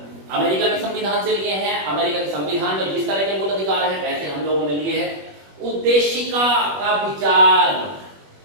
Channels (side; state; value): left; late; 21 ms